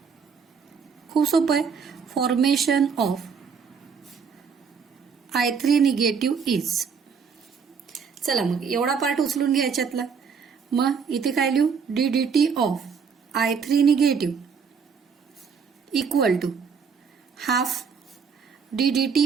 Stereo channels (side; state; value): left; quieter; 6.1 dB